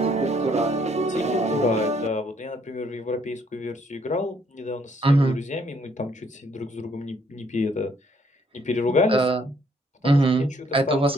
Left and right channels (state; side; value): normal; both; correlation 0.67